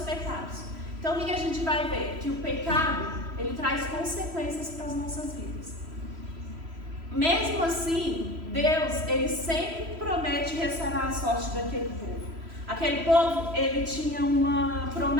Então o que a gente vai ver? Que o pecado, ele traz consequências para as nossas vidas. Mesmo assim, Deus, ele sempre promete restaurar a sorte daquele povo. Aquele povo, ele tinha uma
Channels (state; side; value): late; left; 3.0 ms